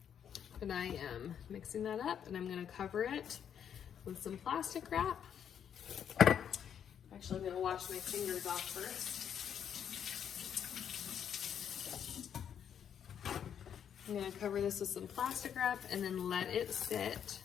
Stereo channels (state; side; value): quieter; right; 8.6 dB